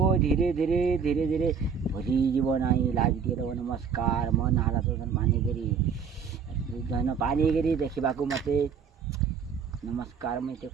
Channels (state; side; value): quieter; left; 6.5 dB